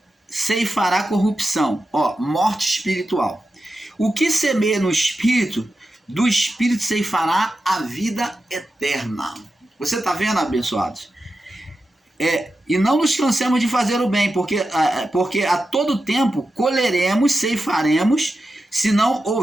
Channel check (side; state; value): both; normal; correlation 0.90